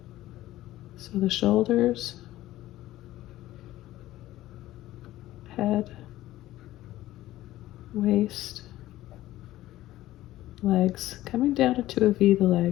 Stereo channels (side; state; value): right; quieter; 15.4 dB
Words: So the shoulders, head, waist, legs, coming down into a V, the